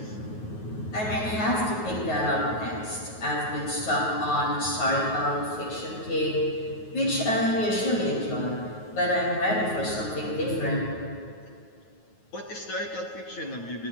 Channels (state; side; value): late; right; 9.3 ms